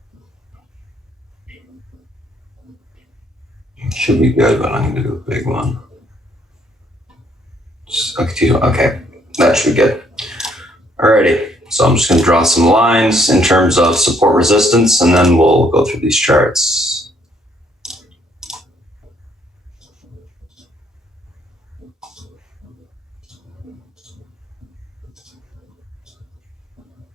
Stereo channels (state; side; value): normal; both; correlation 0.67